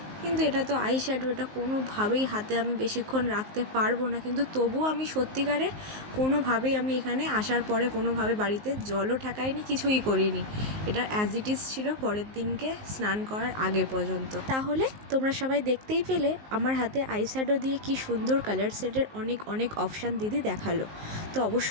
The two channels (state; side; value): late; left; 19 ms